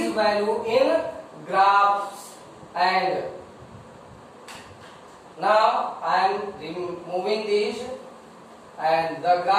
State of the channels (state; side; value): identical; both; correlation 1.00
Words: value in graphs. And now I am removing these, and the